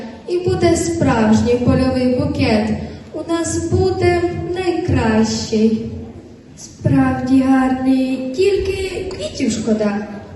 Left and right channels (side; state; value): both; identical; correlation 1.00